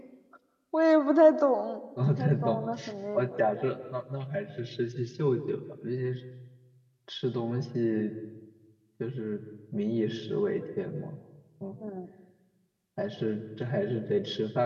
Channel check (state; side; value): identical; both; correlation 1.00